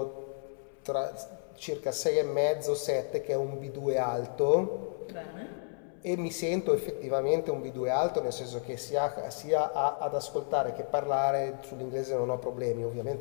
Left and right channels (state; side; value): silent; right; 57 dB below the other